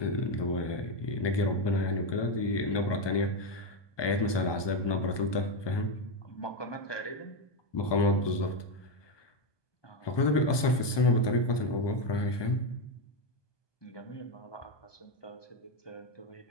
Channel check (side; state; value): right; late; 1.2 ms